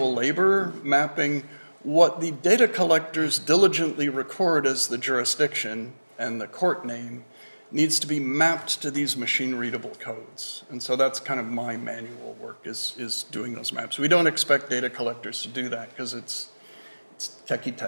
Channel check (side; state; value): both; inverted; correlation -1.00